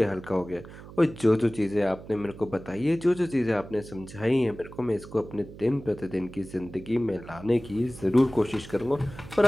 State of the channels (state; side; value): noise; right; hum, 16 dB below the sound